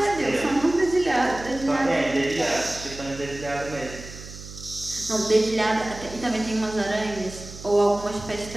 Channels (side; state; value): right; noise; hum, 14 dB below the sound